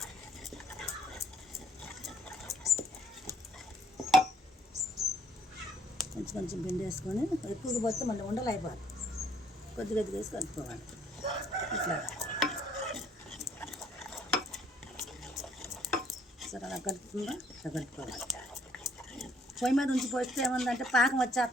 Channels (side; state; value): both; normal; correlation 0.63